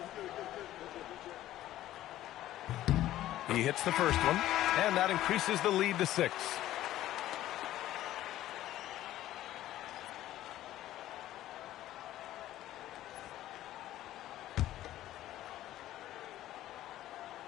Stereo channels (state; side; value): quieter; right; 13.9 dB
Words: He hits the first one, and that increases the lead to 6.